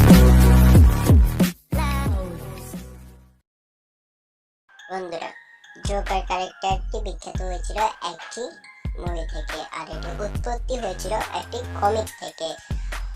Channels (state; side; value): identical; both; correlation 1.00